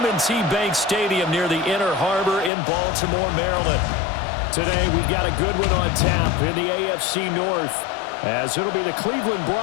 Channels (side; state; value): right; drops out; at 2.5 s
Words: Bank Stadium near the Inner Harbor in Baltimore, Maryland. Today, we've got a good one on tap in the AFC North, as it'll be the Cleveland